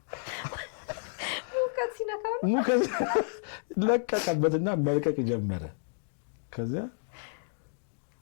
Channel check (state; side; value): silent; right; digital silence